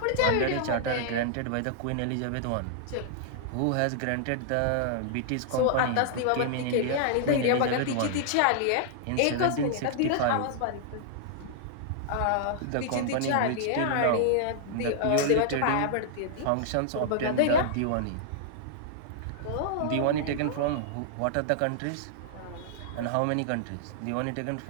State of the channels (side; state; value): both; different; correlation -0.01